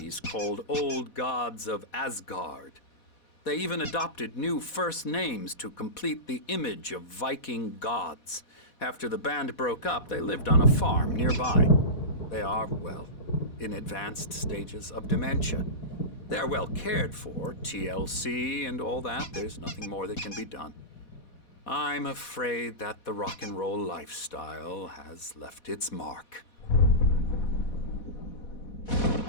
called Old Gods of Asgard. They even adopted new first names to complete the image of Viking gods. After the band broke up, they lived on a farm nearby. They are, well, in advanced stages of dementia. They're well cared for, TLC and all that. There's nothing more that can be done. I'm afraid that the rock and roll lifestyle has left its mark.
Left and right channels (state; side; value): late; right; 4.1 ms